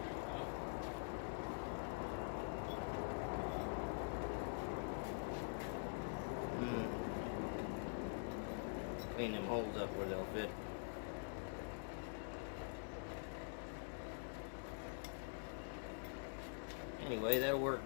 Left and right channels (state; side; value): silent; right; digital silence